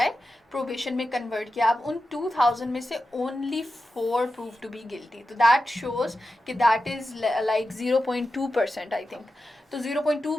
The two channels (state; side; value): normal; both; correlation 0.91